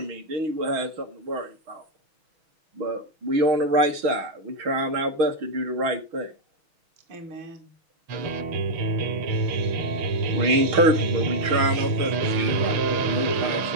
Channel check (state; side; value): late; left; 6.4 ms